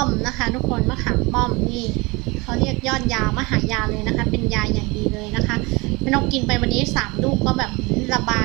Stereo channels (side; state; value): left; quieter; 25.0 dB